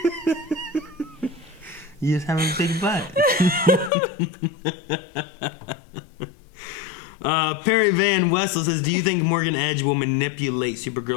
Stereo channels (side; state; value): right; drops out; at 3.9 s